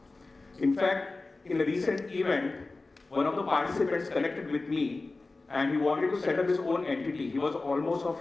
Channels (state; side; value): quieter; right; 3.4 dB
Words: In fact, in a recent event, one of the participants connected with me and he wanted to set up his own entity. He was almost of